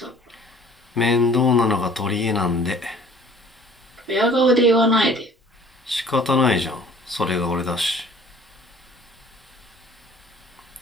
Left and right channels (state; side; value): normal; both; correlation 0.52